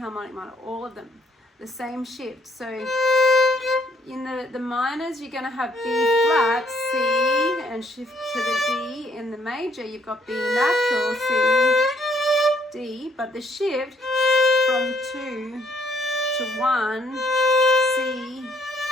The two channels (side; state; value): both; normal; correlation 0.68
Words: minor, all of them. the same shift. So in the minors, you're going to have B flat, C, and shift to the D. In the major, you've got B natural, C, D, but the shift from 2 to 1, C